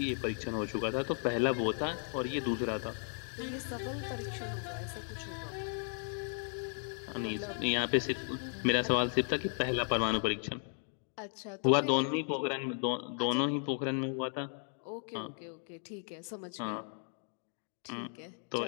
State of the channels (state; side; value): silent; right; 54 dB below the other